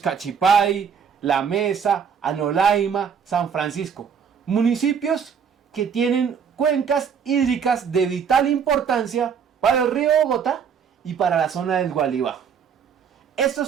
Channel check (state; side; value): quieter; left; 7.0 dB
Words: La Mesa, Anolaima, San Francisco. Municipios que tienen cuencas hídricas de vital importancia para el río Bogotá y para la zona del Gualibá.